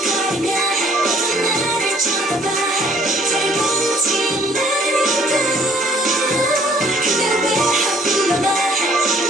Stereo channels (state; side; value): normal; both; correlation 0.59